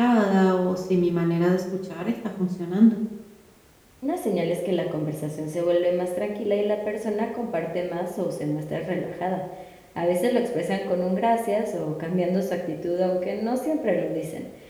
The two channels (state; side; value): identical; both; correlation 1.00